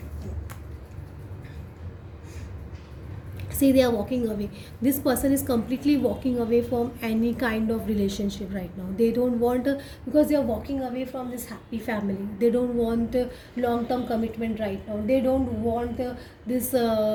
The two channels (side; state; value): both; identical; correlation 1.00